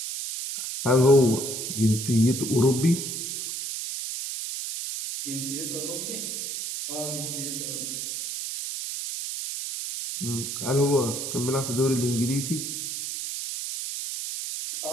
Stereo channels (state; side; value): noise; right; hiss, 5 dB below the sound